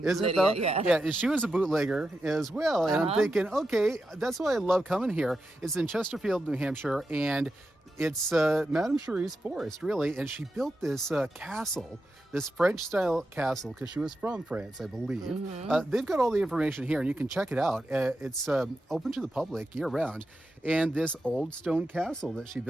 Is Lydia, it though? Yeah. She was a bootlegger as well, and I'm thinking, okay, that's why I love coming here. It's in Chesterfield, New Hampshire, and it's Madame Sherri's Forrest, really, and she built this castle. This French-style castle, because she was from France, I believe. They've got all the information here, and you can check it out. It's open to the public year-round. And this old stone castle that she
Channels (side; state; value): both; normal; correlation 0.89